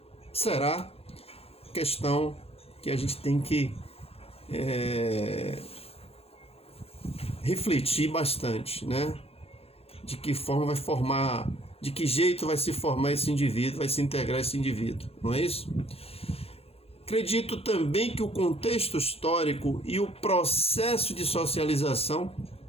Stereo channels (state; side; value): late; right; 0.29 ms